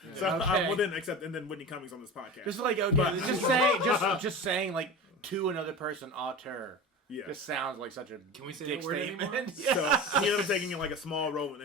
So Okay. and then Whitney Cummings on this podcast. Just like okay, just saying like to another person auteur. Yeah. Just sounds like such a Can we say dick that word statement. anymore? So he ended up taking like a small role in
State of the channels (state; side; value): normal; both; correlation 0.31